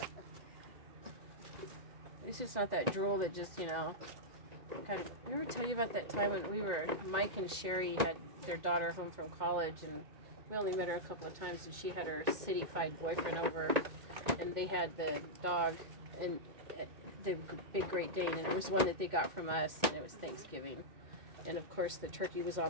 At least it's not that drool that just, kind of. Did I ever tell you about that time when Mike and Sherry had their daughter home from college, and we only met her a couple of times, and she had her city-fied boyfriend over, and they had the dog, and the big Great Dane, and it was one that they got from us, and it was Thanksgiving. And of course the turkey was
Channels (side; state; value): left; late; 1.9 ms